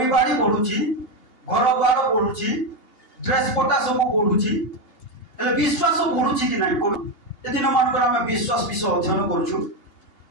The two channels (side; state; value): right; late; 2.8 ms